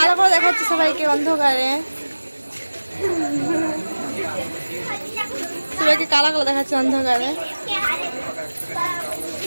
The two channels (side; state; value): both; inverted; correlation -1.00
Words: করে দেখাচ্ছে সবাইকে অন্ধকারে, সবাইকে কালো কালো দেখাচ্ছে অন্ধকারে।